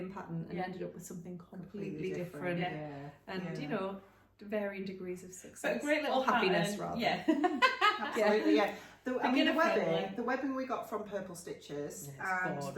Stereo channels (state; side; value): identical; both; correlation 1.00